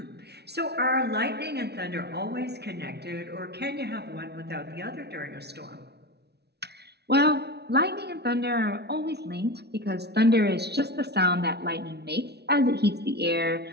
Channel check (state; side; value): late; left; 0.49 ms